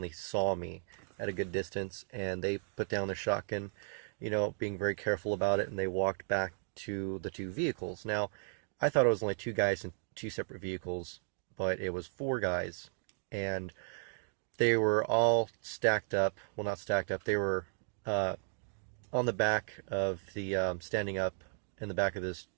saw me at a good distance, and they put down their shotgun, being very careful about it, and they walked back to the two vehicles. Now, I thought it was only two guys in two separate vehicles, but it was four guys, and they were all stacked up. Well, not stacked up. They were on the back of the, standing up in the back of this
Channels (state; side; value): silent; left; digital silence